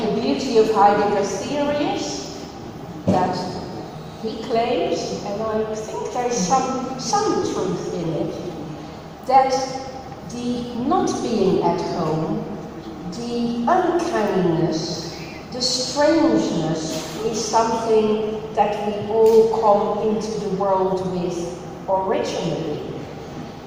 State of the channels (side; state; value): both; identical; correlation 1.00